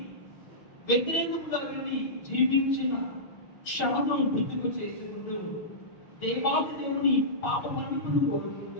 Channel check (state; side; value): late; right; 6.4 ms